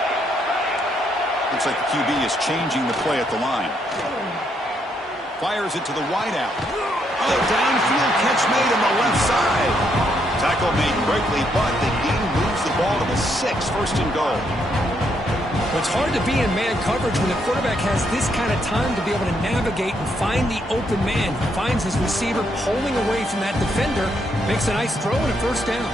Looks like the QB is changing the play at the line. Fires it to the wideout. Downfield catch made on the left side. Tackle made quickly, but the game moves the ball to the 6, first and goal. It's hard to be in man coverage when the quarterback has this kind of time to be able to navigate and find the open man. He finds his receiver pulling away from that defender, makes a nice throw and a first down.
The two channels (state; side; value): normal; both; correlation 0.75